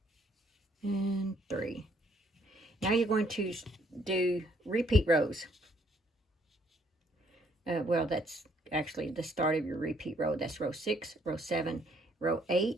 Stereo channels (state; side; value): normal; both; correlation 0.67